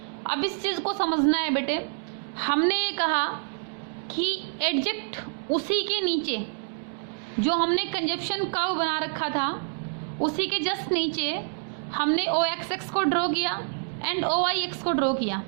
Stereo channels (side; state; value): left; silent; digital silence